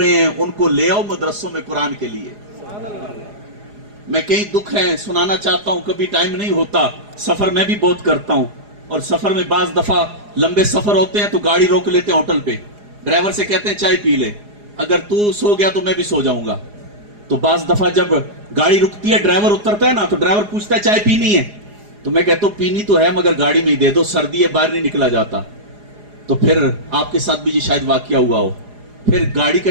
ہیں، ان کو لے آؤ مدرسوں میں قرآن کے لیے۔ میں کئی دکھ ہیں سنانا چاہتا ہوں، کبھی ٹائم نہیں ہوتا، سفر میں بھی بہت کرتا ہوں، اور سفر میں بعض دفعہ لمبے سفر ہوتے ہیں تو گاڑی روک لیتے ہیں ہوٹل پہ، ڈرائیور سے کہتے ہیں چائے پی لے، اگر تو سو گیا تو میں بھی سو جاؤں گا۔ تو بعض دفعہ جب گاڑی رکتی ہے ڈرائیور اترتا ہے نا تو ڈرائیور پوچھتا ہے چائے پینی ہے، تو میں کہتا ہوں پینی تو ہے مگر گاڑی میں ہی دے دو، سردی ہے باہر نہیں نکلا جاتا۔ تو پھر آپ کے ساتھ بھی یہ شاید واقعہ ہوا ہو، پھر گاڑی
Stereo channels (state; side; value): late; left; 4.8 ms